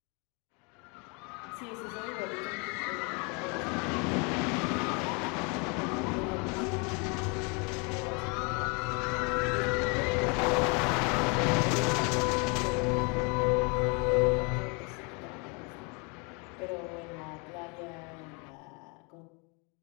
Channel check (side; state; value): right; quieter; 32.5 dB